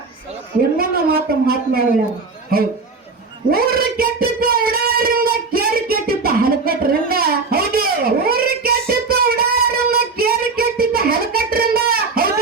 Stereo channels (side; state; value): left; quieter; 4.3 dB